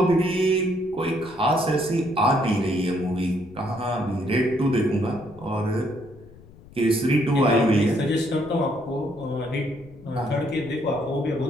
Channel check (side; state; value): left; noise; rumble, 22 dB below the sound